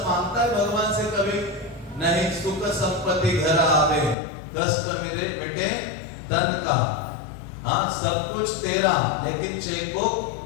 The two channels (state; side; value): drops out; right; at 4.2 s